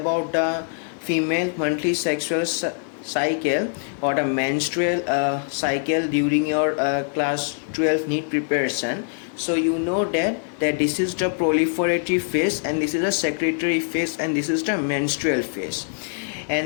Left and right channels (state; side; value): silent; right; digital silence